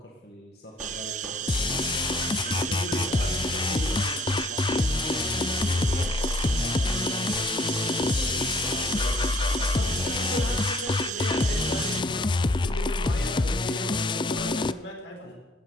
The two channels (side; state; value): both; normal; correlation 0.59